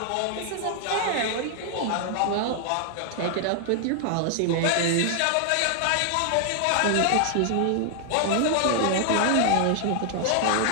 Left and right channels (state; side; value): different; both; correlation 0.00